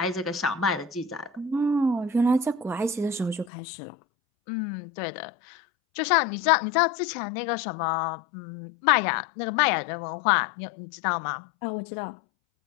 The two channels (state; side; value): drops out; right; at 3.5 s